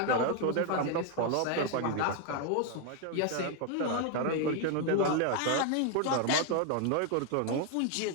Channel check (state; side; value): different; both; correlation 0.01